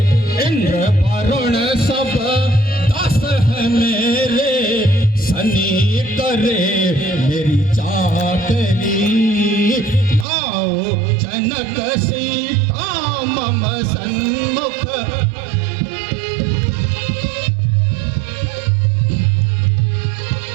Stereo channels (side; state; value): left; drops out; at 10.2 s